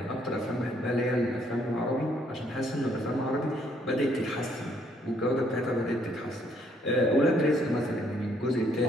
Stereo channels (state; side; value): normal; both; correlation 0.68